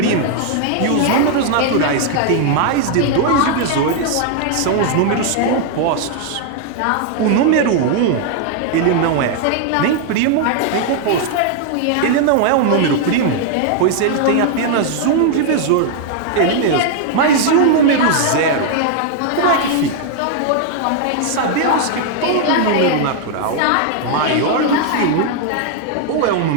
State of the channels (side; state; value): both; different; correlation 0.00